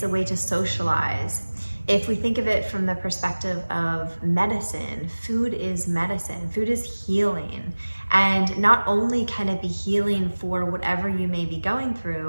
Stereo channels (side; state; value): both; inverted; correlation -1.00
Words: a way to socialize. If we think of it from the perspective of medicine, food is medicine. Food is healing. And not only can it be healing for whatever you may be going